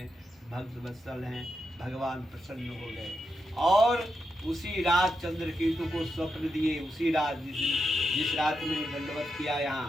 भक्त वत्सल हैं। भगवान प्रसन्न हो गए और उसी रात चंद्रकेतु को स्वप्न दिए। उसी रात जिस रात में दंडवत किया,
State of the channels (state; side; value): normal; both; correlation 0.85